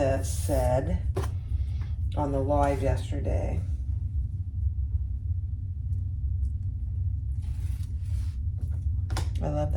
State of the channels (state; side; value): identical; both; correlation 1.00